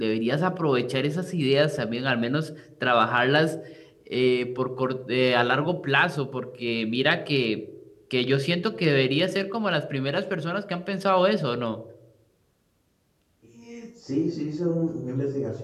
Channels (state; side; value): identical; both; correlation 1.00